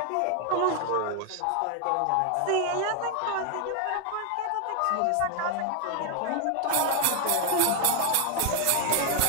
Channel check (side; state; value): both; different; correlation 0.00